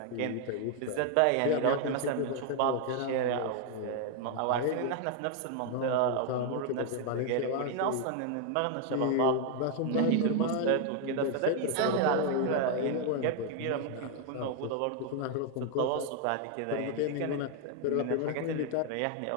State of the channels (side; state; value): both; different; correlation 0.00